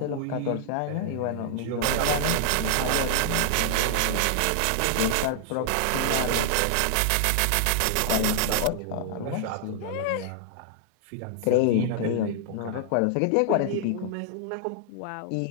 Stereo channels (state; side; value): different; both; correlation -0.01